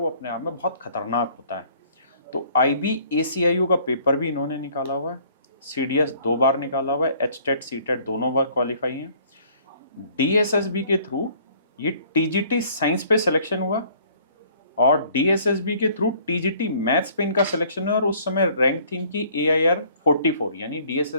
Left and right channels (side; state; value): both; inverted; correlation -0.57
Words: अपने आप में बहुत खतरनाक होता है। तो आईबी एसीआईओ का पेपर भी इन्होंने निकाला हुआ है, सीडीएस 2 बार निकाला हुआ है, एचटेट सीटेट दोनों बार क्वालिफाई हैं। डीएसएसबी के थ्रू ये टीजीटी साइंस पे सिलेक्शन हुआ, और डीएसएसबी के थ्रू टीजीटी मैथ्स पे इनका सिलेक्शन है। और उस समय रैंक थी इनकी एआईआर 44, यानी